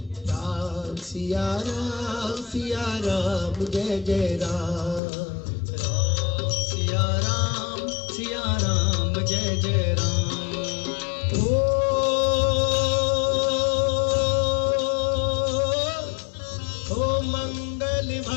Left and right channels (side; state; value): right; drops out; at 5.0 s